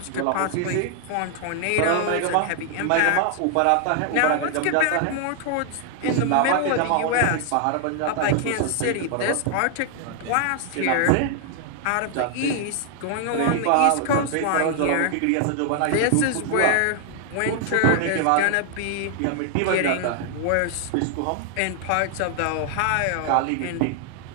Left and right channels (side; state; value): both; different; correlation 0.00